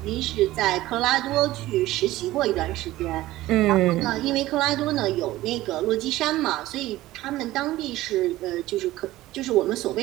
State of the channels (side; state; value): left; quieter; 16.4 dB